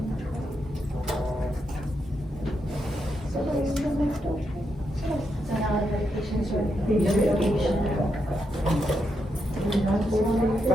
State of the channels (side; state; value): both; normal; correlation 0.83